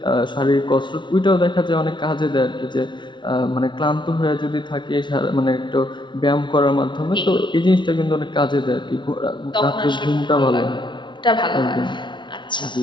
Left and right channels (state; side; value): late; right; 0.23 ms